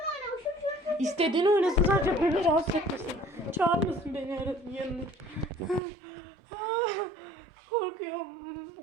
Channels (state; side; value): drops out; left; at 5.8 s